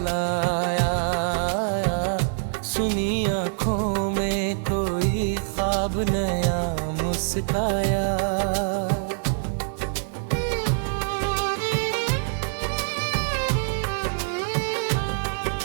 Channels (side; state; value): left; silent; digital silence